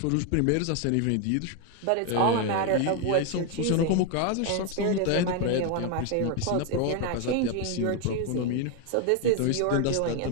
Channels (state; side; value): different; both; correlation 0.01